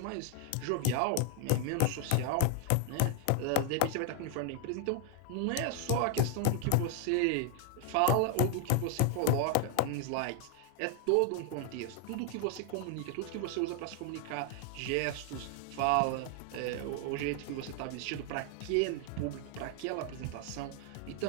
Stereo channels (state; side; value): different; both; correlation 0.00